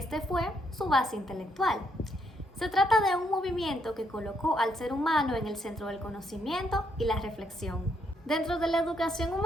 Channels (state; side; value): normal; both; correlation 0.74